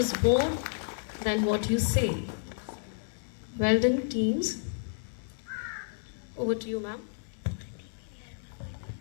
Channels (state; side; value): silent; right; digital silence